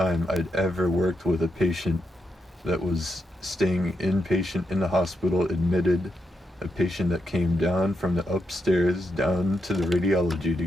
I'd ever worked with a patient that was staying inpatient in the hospital, admitted, a patient that came down from the upstairs down to the radiology to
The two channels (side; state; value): both; normal; correlation 0.83